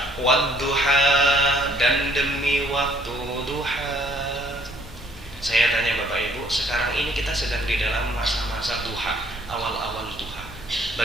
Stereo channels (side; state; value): both; normal; correlation 0.63